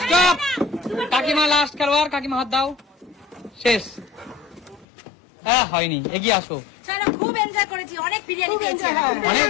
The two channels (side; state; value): right; drops out; at 4.9 s